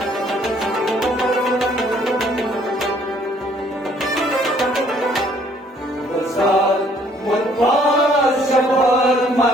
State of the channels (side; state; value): both; normal; correlation 0.62